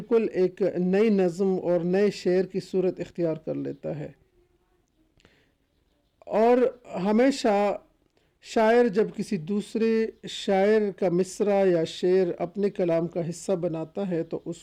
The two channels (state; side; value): identical; both; correlation 1.00